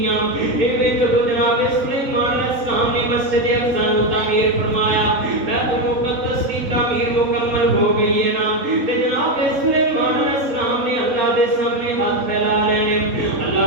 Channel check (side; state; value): left; late; 3.9 ms